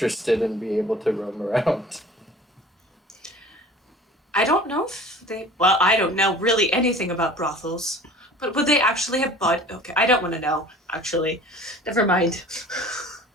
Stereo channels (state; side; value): normal; both; correlation 0.44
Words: and be able to roam around. I don't know if they. Well, I don't know really anything about brothels, but would they actually have Okay, I don't want to know. Actually, never mind.